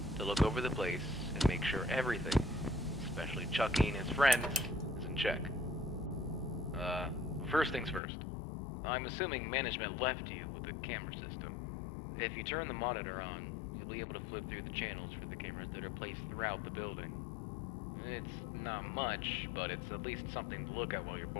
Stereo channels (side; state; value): right; drops out; at 8.0 s